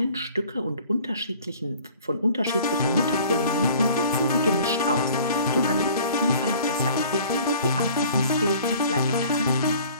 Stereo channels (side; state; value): both; inverted; correlation -0.50